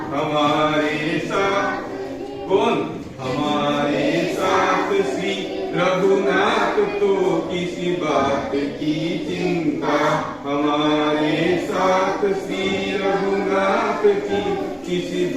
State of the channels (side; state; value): both; identical; correlation 1.00